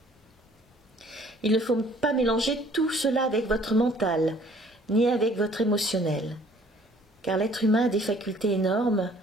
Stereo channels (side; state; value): both; normal; correlation 0.57